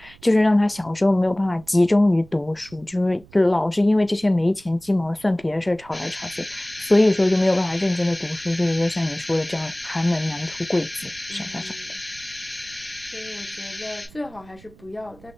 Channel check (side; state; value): right; noise; rumble, 24 dB below the sound